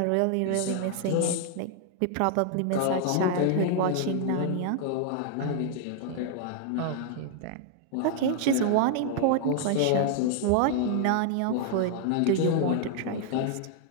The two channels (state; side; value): different; both; correlation 0.00